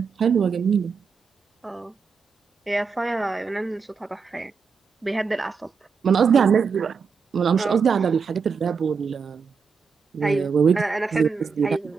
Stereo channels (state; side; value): quieter; left; 5.6 dB